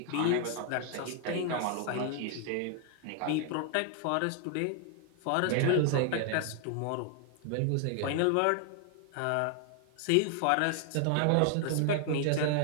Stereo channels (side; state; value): both; different; correlation 0.00